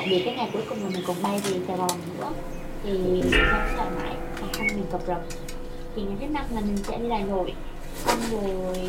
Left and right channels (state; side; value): identical; both; correlation 1.00